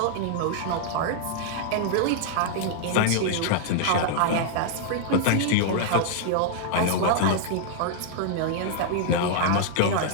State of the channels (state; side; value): different; both; correlation -0.01